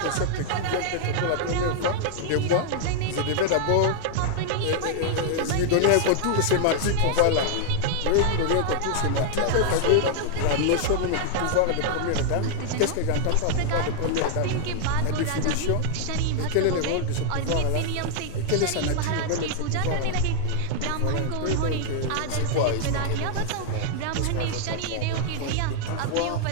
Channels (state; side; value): different; both; correlation -0.01